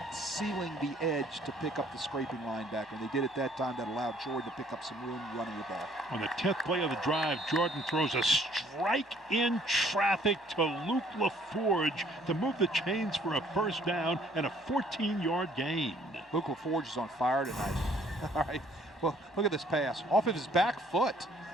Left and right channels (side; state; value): both; normal; correlation 0.60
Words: sealing the edge to pick up the scraping linebacker. And they did it that time. That allowed Jordan to pick up some room running the ball. On the 10th play of the drive, Jordan throws a strike in traffic to Luke LaForge to move the chains for a first down and a 14-yard gain. Luke LaForge is on fire tonight. All right. Well, look at this pass. Off of his back foot.